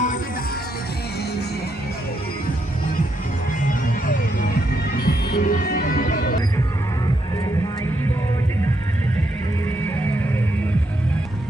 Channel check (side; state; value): both; normal; correlation 0.78